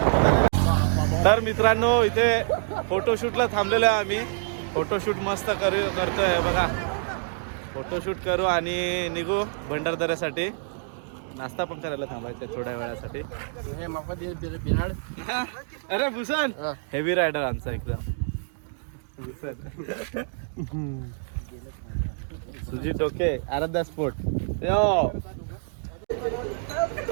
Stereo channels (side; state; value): left; silent; digital silence